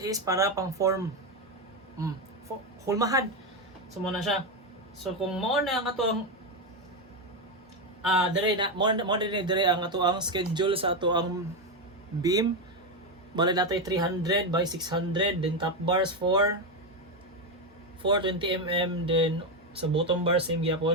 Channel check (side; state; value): both; normal; correlation 0.09